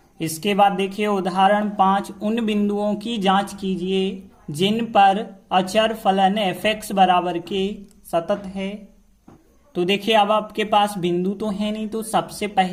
इसके बाद देखिए उदाहरण 5, उन बिंदुओं की जांच कीजिए जिन पर अचर फलन fx बराबर के सतत है। तो देखिए अब आपके पास बिंदु तो है नहीं, तो सबसे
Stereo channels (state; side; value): identical; both; correlation 1.00